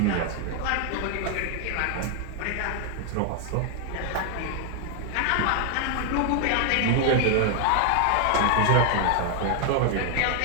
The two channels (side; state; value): both; different; correlation 0.00